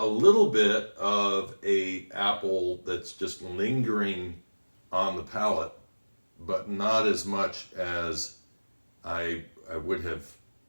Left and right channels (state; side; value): inverted; both; correlation -1.00